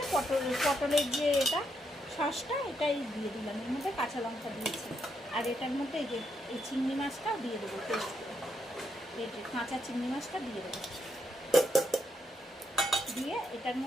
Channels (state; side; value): normal; both; correlation 0.79